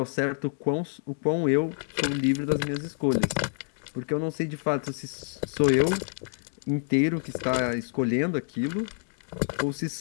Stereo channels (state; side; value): silent; right; digital silence